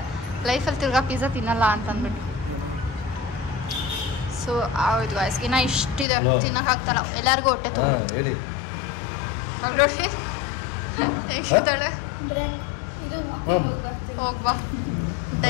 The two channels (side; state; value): right; drops out; at 6.1 s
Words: ಲೈಫಲ್ಲಿ ತಿರ್ಗಾ ಪಿಜ್ಜಾ ತಿನ್ನಲ್ಲ ಅಂತ ಅಂದ್ಬಿಟ್ಟು. ಸೊ ಹೌದು ಗಾಯ್ಸ್, ಇನ್ನು ಇಷ್ಟಿದೆ ತಿನ್ನೋಕ್ಕಾಗ್ತಲ್ಲ, ಎಲ್ಲರಿಗೂ ಹೊಟ್ಟೆ ತುಂಬ. ಹೇಳಿ ನೋಡಿ ಹೇಗಿದ್ದಾಳೆ. ಇದು ಹೋಗ್ಬಾ